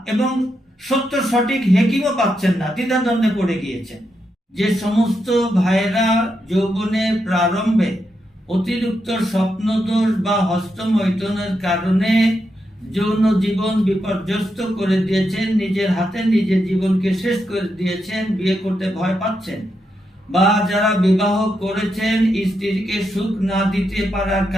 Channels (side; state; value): both; normal; correlation 0.83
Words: এবং সত্য সঠিক হেকিমও পাচ্ছেন না, দ্বিধাদ্বন্দ্বে পড়ে গিয়েছেন, যে সমস্ত ভাইরা যৌবনের প্রারম্ভে অতিরিক্ত স্বপ্নদোষ বা হস্তমৈথুনের কারণে যৌন জীবন বিপর্যস্ত করে দিয়েছেন, নিজের হাতে নিজের জীবনকে শেষ করে দিয়েছেন, বিয়ে করতে ভয় পাচ্ছেন, বা যারা বিবাহ করেছেন স্ত্রীকে সুখ না দিতে পারার